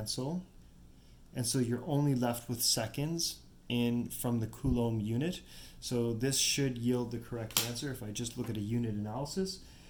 and so you're only left with seconds from the Coulomb unit. So this should yield the correct answer if I just look at a unit analysis,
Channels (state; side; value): identical; both; correlation 1.00